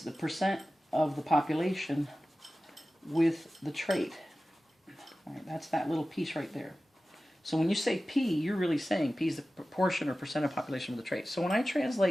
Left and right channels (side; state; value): both; normal; correlation 0.95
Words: the percent of the population with the trait. All right, that's that little piece right there. So when you say P, you're really saying P is the proportion or percent of population with the trait. So when I